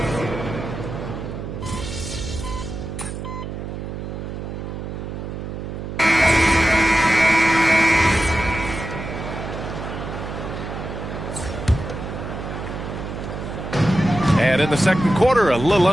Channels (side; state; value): right; noise; hum, 7 dB below the sound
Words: And in the second quarter, a little